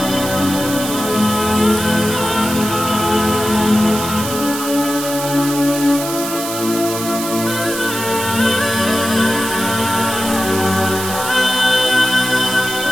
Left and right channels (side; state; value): right; noise; hiss, 7 dB below the sound